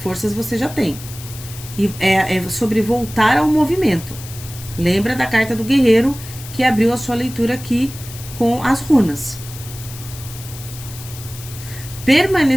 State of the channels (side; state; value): left; noise; hiss, 14 dB below the sound